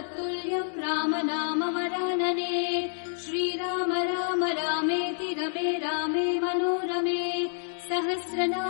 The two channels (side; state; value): right; silent; digital silence